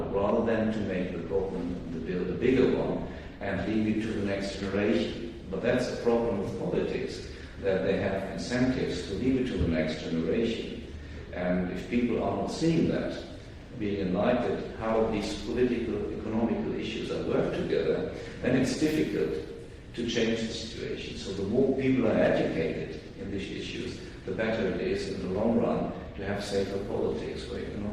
rather than to make the problem, the bill, a bigger one, and leave it to the next generation. But that's a problem with politics, that they have incentives to leave it to the next generation. And if people are not seeing that, being enlightened how these political, economical issues are worked together, then it's difficult to change the situation. So the more people are educated in these issues, the better it is in the long run to have safer politics for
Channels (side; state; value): both; identical; correlation 1.00